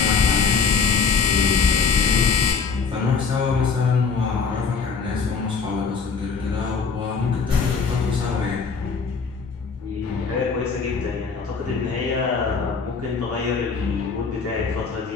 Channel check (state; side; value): quieter; right; 5.3 dB